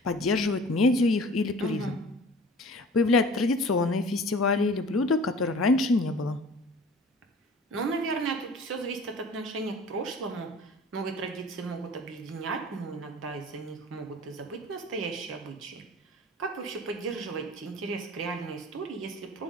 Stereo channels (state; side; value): normal; both; correlation 0.45